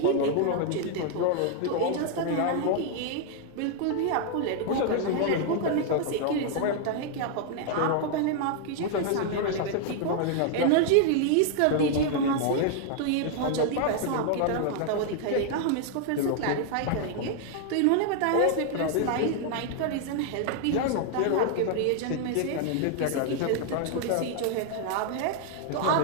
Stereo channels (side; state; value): both; different; correlation 0.00